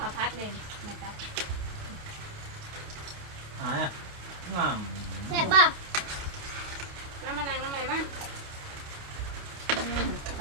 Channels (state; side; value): late; left; 29 ms